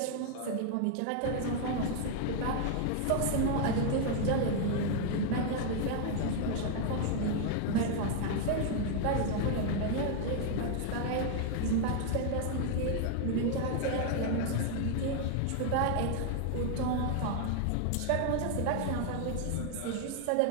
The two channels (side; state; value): both; different; correlation 0.00